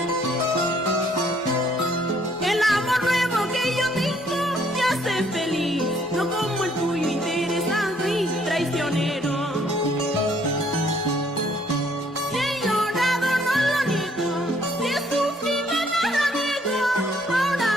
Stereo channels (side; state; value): both; normal; correlation 0.65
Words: El amor nuevo que yo tengo me hace feliz, no como el tuyo interesado y traicionero. Si he llorado no lo niego, si he sufrido nada niego. Ahora